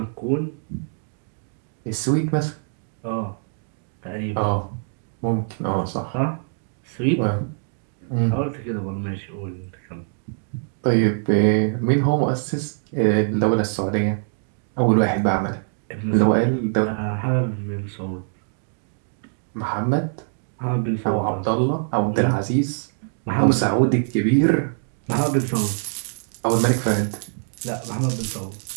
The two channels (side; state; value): left; silent; digital silence